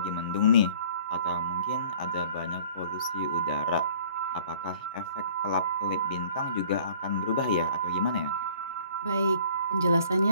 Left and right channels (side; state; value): both; inverted; correlation -0.52